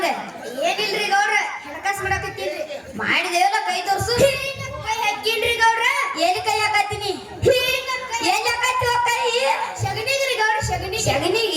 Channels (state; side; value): identical; both; correlation 1.00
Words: ಏನಿಲ್ರಿ ಗೌಡ್ರ ಹಣಕಾಸು ಮಾಡಾಕತ್ತೀನ್ರಿ ಮಾಡಿದೇವಲ್ಲ ಕೈ ತೋರ್ಸು ಕೈ ಹಾಕಿನ್ರಿ ಗೌಡ್ರ ಏನ್ ಕೈ ಹಾಕತ್ತೀನಿ ಏನ್ ಹಾಕತ್ತಿ ಕೈ ಶಗಣಿಗ್ರಿ ಗೌಡ್ರ